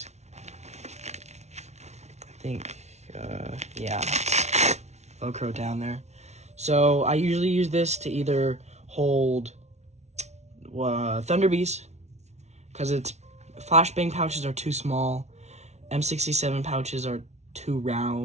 I think, yeah, Velcro down there. So I usually use this to either hold Thunderbees, because its flashbang pouches are too small, M67 pouches are too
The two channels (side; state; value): left; late; 0.32 ms